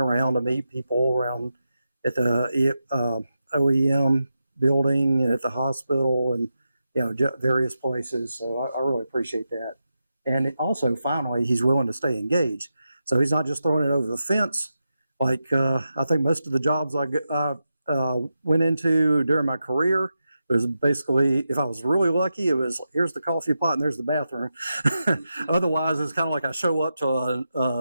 to meet people around at the OEM building and at the hospital and various places. So I really appreciate that. And also, finally, he's willing to stay engaged. So he's not just throwing it over the fence. Like I think most of the jobs I went into during my career, it was basically, if I was really lucky, it was here's the coffee pot and there's the bathroom. Otherwise, it's kind of like I show up to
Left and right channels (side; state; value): both; inverted; correlation -0.88